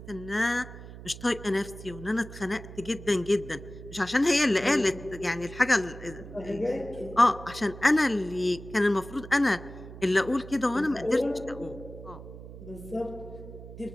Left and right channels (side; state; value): right; noise; hum, 14 dB below the sound